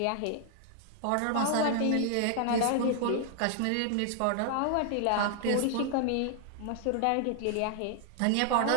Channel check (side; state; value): both; different; correlation 0.00